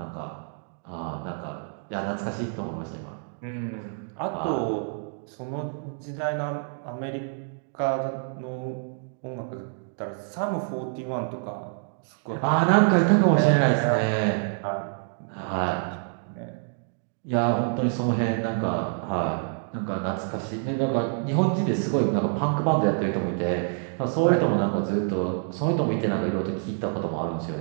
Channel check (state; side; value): silent; left; 57 dB below the other